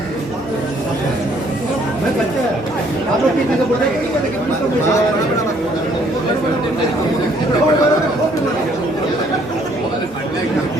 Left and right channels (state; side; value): normal; both; correlation 0.64